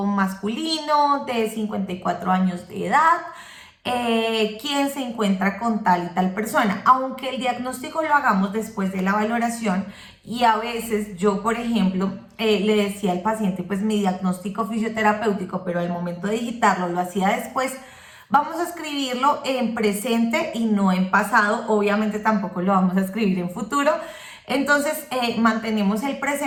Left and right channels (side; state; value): both; identical; correlation 1.00